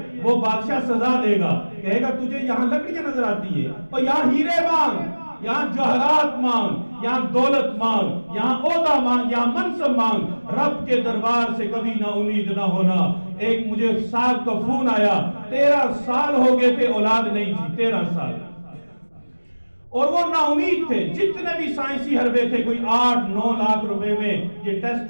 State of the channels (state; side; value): inverted; both; correlation -1.00